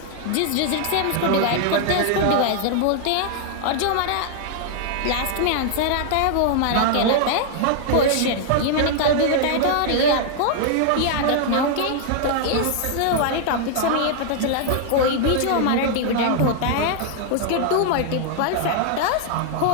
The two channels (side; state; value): both; different; correlation 0.00